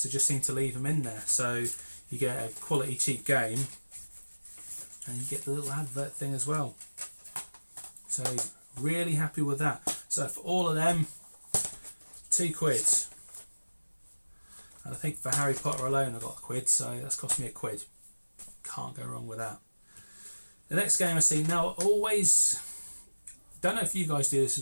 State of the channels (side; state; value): both; inverted; correlation -1.00